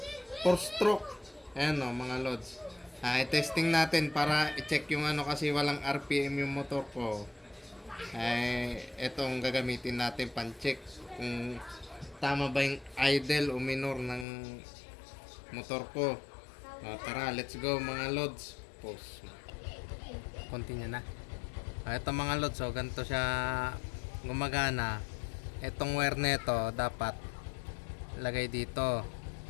4-stroke. Ayan o, mga Lods. I-testing natin para i-check yung ano kasi walang RPM yung motor ko. Etong gagamitin natin pan-check kung tama ba yung idle o minor ng motor ko. Tara, let's go mga Lods. Pause. Continue na. Ito mga Lods, so ganito siya gumagana. Itong wire nito dapat lagay dito.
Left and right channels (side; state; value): right; drops out; at 14.2 s